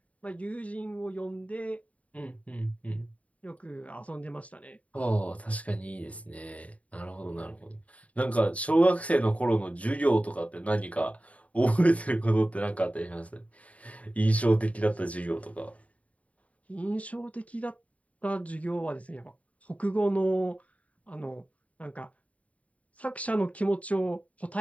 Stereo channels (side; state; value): right; late; 0.067 ms